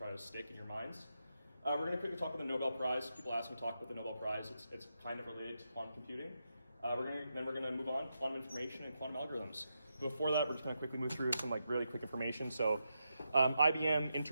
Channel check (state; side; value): inverted; both; correlation -0.85